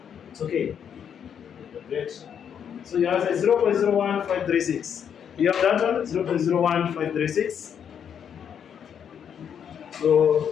It's okay. Great. So you have 0.01536. You have that one? 0.01536.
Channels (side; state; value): right; quieter; 8.1 dB